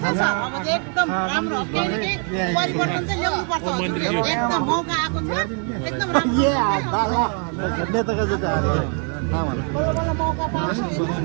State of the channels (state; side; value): quieter; left; 39.2 dB